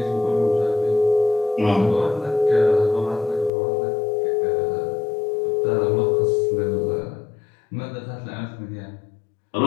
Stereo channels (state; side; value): drops out; right; at 3.5 s